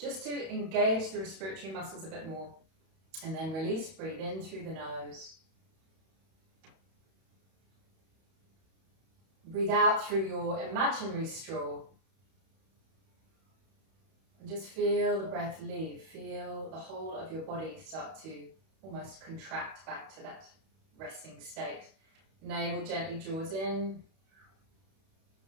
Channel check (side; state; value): left; late; 31 ms